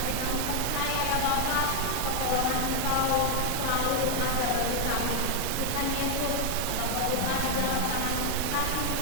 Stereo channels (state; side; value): different; both; correlation 0.00